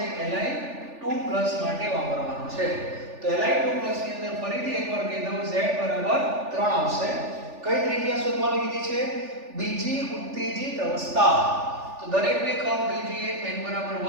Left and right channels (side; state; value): left; late; 3.4 ms